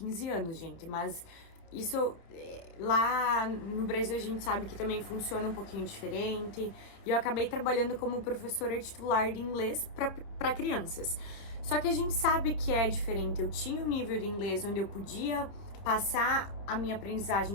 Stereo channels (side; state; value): right; late; 30 ms